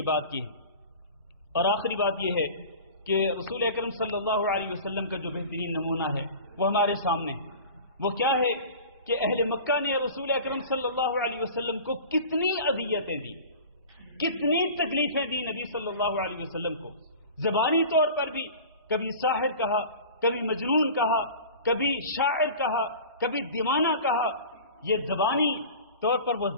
بات کی۔ اور آخری بات یہ ہے کہ رسول اکرم صلی اللہ علیہ وسلم کا جو بہترین نمونہ ہے وہ ہمارے سامنے ہے۔ وہ کیا ہے کہ اہل مکہ نے رسول اکرم صلی اللہ علیہ وسلم کو کتنی اذیتیں دی، کتنی تکلیفیں دی نبی صلی اللہ علیہ وسلم کو، زبانی طور پر بھی، کبھی ساحر کہا، کبھی مجنون کہا، کبھی شاعر کہا، کبھی دیوانہ کہا، یہ زبانی طور پر وہ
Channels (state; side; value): inverted; both; correlation -0.39